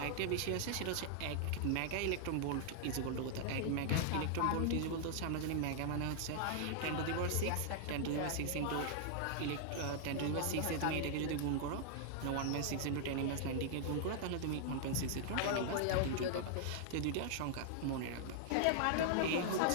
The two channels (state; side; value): different; both; correlation -0.01